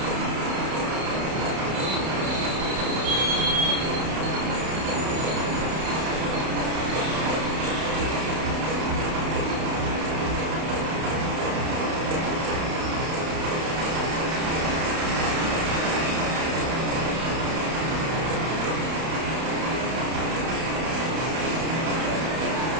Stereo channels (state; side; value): late; left; 31 ms